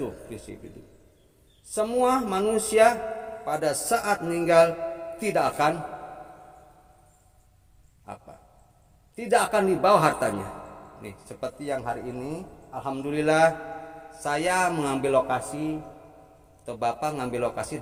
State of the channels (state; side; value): identical; both; correlation 1.00